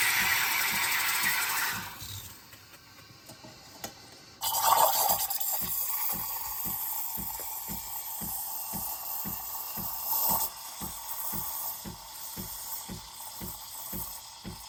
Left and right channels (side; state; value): both; identical; correlation 1.00